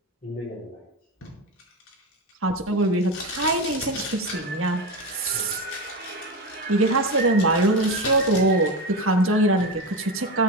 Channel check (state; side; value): normal; both; correlation 0.19